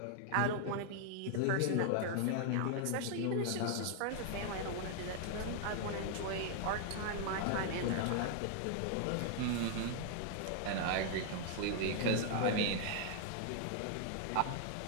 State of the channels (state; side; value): different; both; correlation 0.00